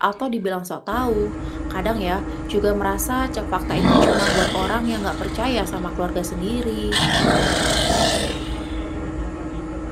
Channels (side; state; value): both; identical; correlation 1.00